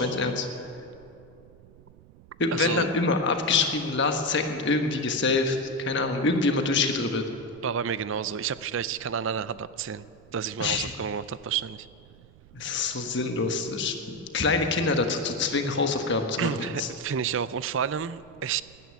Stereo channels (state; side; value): noise; right; rumble, 24 dB below the sound